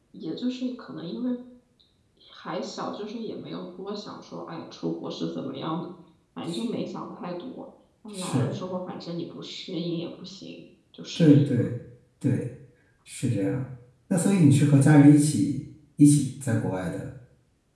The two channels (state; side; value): identical; both; correlation 1.00